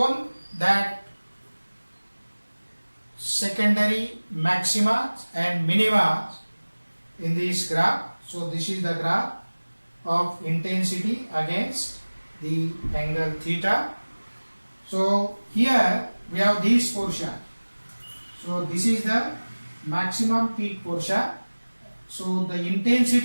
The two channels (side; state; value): both; inverted; correlation -1.00